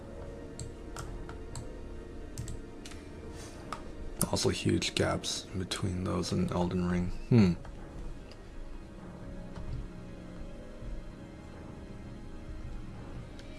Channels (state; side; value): identical; both; correlation 1.00